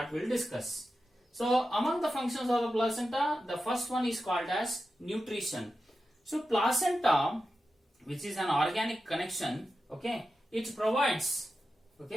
we'll discuss. So among the functions of the placenta, the first one is called as nutrition. So placenta, which is an organic connection, okay, it provides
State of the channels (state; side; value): normal; both; correlation 0.91